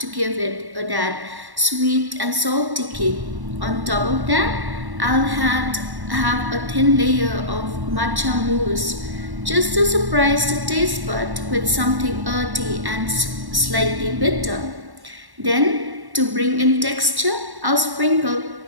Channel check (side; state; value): left; late; 1.1 ms